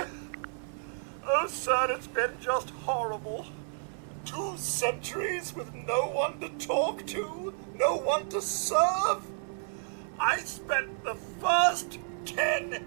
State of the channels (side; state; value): left; silent; 57 dB below the other